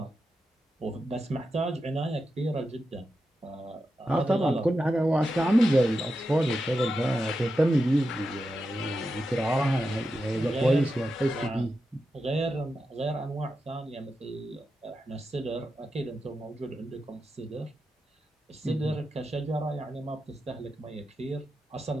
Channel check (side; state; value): both; normal; correlation 0.89